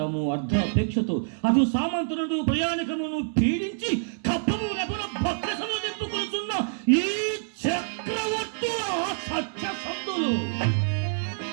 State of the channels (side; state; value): left; silent; 60 dB below the other